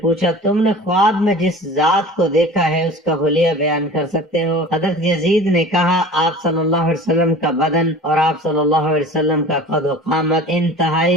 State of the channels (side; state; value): both; normal; correlation 0.40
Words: پوچھا تم نے خواب میں جس ذات کو دیکھا ہے اس کا حلیہ بیان کر سکتے ہو؟ حضرت یزید نے کہا آپ صلی اللہ علیہ وسلم کا بدن اور آپ صلی اللہ علیہ وسلم کا قد و قامت